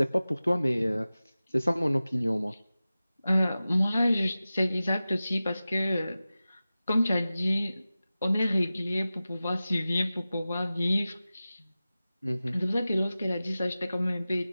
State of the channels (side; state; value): both; inverted; correlation -0.96